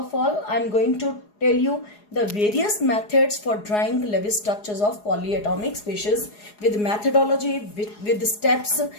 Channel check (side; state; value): right; late; 4.8 ms